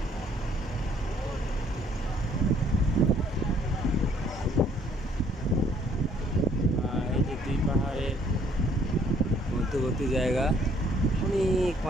এই যে দুই পাহাড়ের মধ্যবর্তী জায়গা, অনেক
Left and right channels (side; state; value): both; normal; correlation 0.62